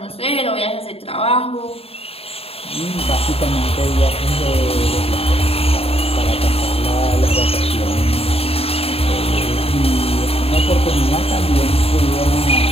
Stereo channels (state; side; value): late; right; 0.28 ms